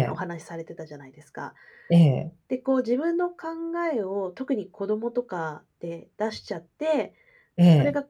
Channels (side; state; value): both; identical; correlation 1.00